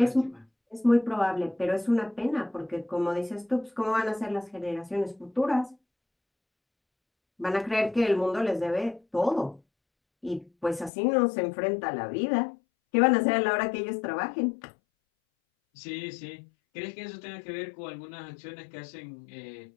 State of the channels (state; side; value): drops out; right; at 10.9 s